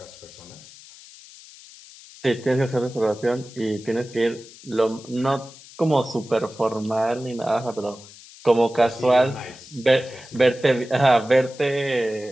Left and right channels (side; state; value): left; noise; hiss, 20 dB below the sound